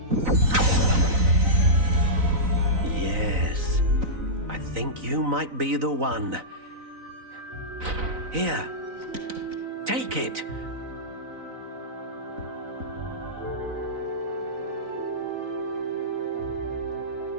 Yes, I think you might be the one. Here, take it.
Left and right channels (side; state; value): left; late; 4.0 ms